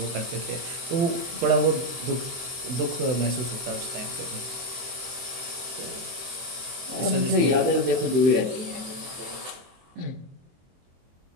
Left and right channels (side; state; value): left; late; 23 ms